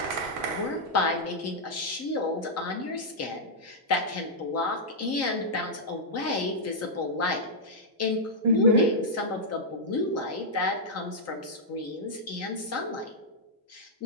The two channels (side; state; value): both; normal; correlation -0.07